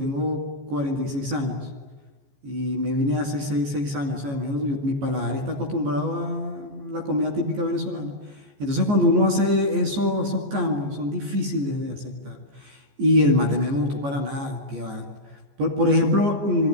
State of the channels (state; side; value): late; left; 14 ms